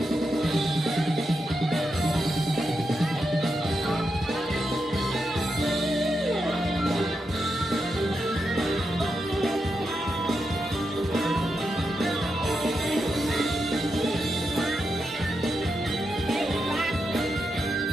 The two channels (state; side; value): normal; both; correlation 0.86